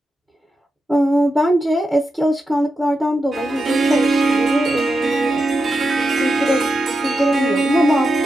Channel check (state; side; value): normal; both; correlation 0.88